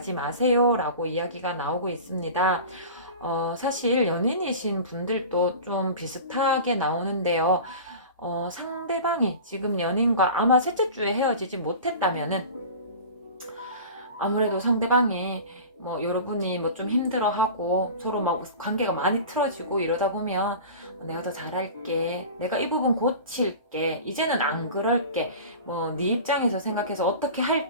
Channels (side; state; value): both; inverted; correlation -0.36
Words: 마세요 라고 이야기가 나오고 있습니다. 사실 연인이신 분들도 좀 비슷하게 나오는데요. 상대방이 지금 연인과 아마 셋째 주에 헤어지지 못했다면은 아무래도 상대방이 여러분이 좀 힘들어하고 서로 관계가 많이 틀어지고 이러다 보면 내가 더 잘할게, 내가 이 부분 고칠게, 이제는 안 그럴게, 네 입장에서 생각해서 어떻게